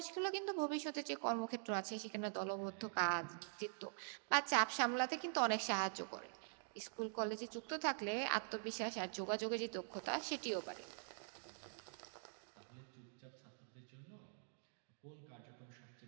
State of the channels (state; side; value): silent; left; digital silence